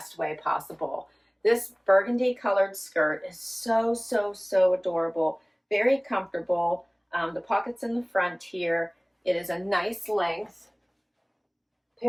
way possible? This burgundy colored skirt is so, so, so adorable. Very comfortable. The pockets in the front here. It is a nice length.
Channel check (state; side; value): identical; both; correlation 1.00